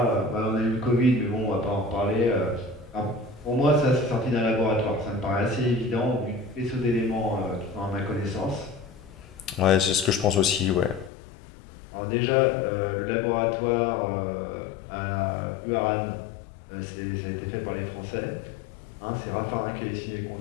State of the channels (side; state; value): right; drops out; at 11.1 s